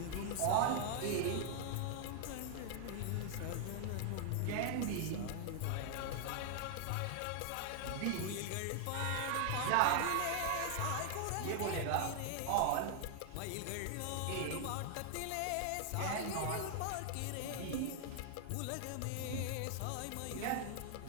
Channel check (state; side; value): different; both; correlation 0.00